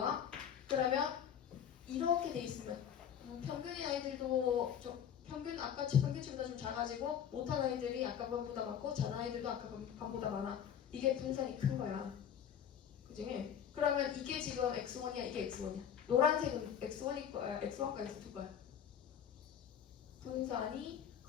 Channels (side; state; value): right; quieter; 8.8 dB